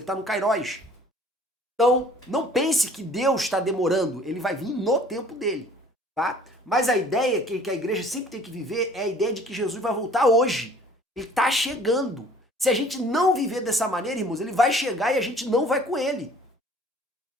está no Kairos. Então, não pense que Deus está demorando, ele vai vir no tempo dele, tá? Mas a ideia que a igreja sempre tem que viver é a ideia de que Jesus vai voltar hoje. Ele está chegando. Se a gente não viver dessa maneira, irmãos, ele vai chegar e a gente não vai com ele.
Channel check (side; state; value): both; normal; correlation 0.52